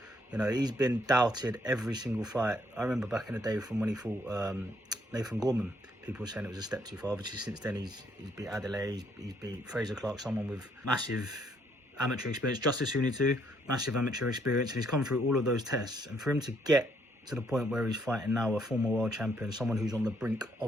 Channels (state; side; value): normal; both; correlation 0.70